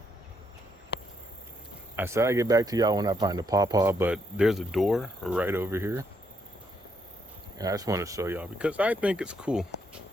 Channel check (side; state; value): both; normal; correlation 0.75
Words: I said I'd get back to y'all when I find a pawpaw, but there's a door right over here. And I just want to show y'all because I think it's cool.